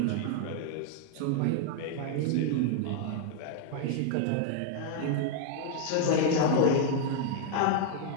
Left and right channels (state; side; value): different; both; correlation 0.00